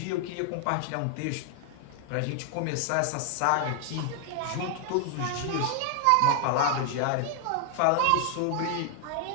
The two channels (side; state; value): both; different; correlation 0.00